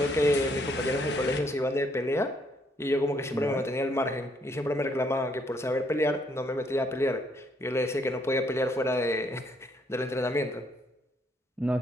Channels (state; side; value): normal; both; correlation 0.70